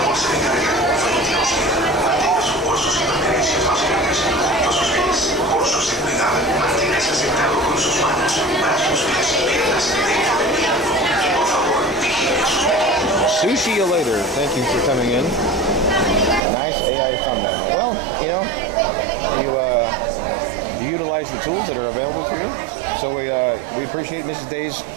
Sushi you later. Thank you for coming in. Nice AI thumbnail. Well, you know, you utilize the tools that are available to you. So we appreciate Mrs. Daze.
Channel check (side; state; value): left; drops out; at 16.4 s